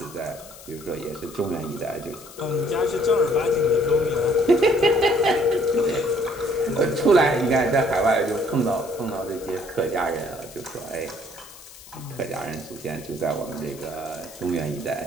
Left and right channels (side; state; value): left; noise; hiss, 19 dB below the sound